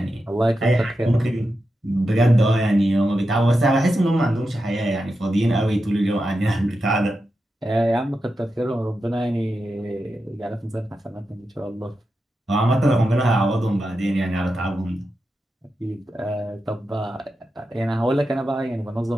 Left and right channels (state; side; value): normal; both; correlation 0.89